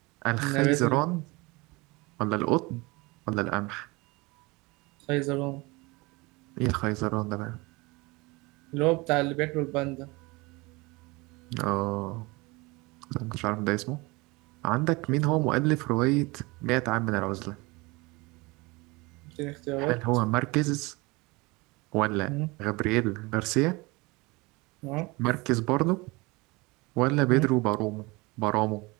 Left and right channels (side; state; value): left; quieter; 24.5 dB